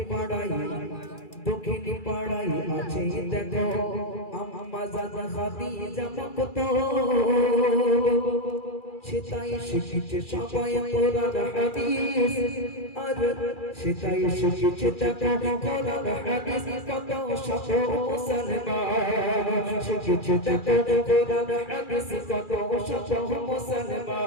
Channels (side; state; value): right; late; 2.4 ms